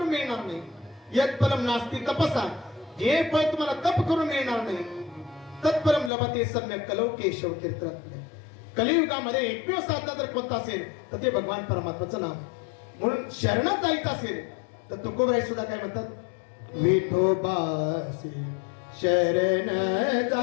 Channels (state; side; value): drops out; right; at 6.1 s